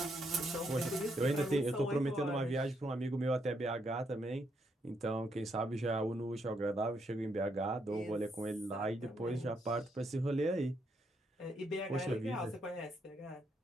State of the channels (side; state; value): both; normal; correlation 0.76